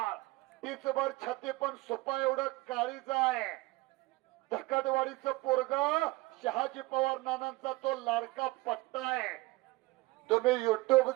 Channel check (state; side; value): quieter; left; 21.4 dB